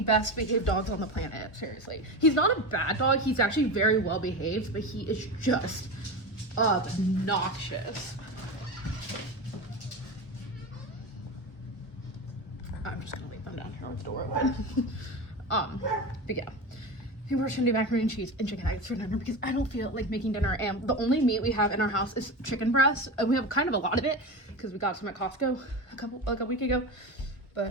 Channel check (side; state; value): right; late; 1.2 ms